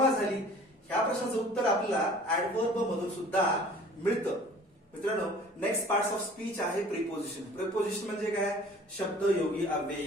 झाली, ह्या प्रश्नाचं उत्तर आपल्याला ऍडव्हर्ब मधून सुद्धा मिळतं. मित्रांनो, नेक्स्ट पार्ट्स ऑफ स्पीच आहे प्रिपोजिशन. प्रिपोजिशन म्हणजे काय? शब्दयोगी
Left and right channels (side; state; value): both; normal; correlation 0.48